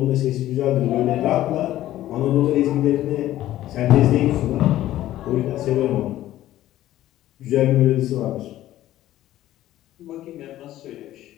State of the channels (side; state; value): right; quieter; 14.0 dB